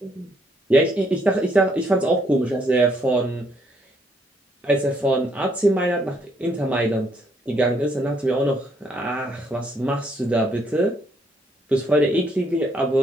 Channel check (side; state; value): both; normal; correlation 0.70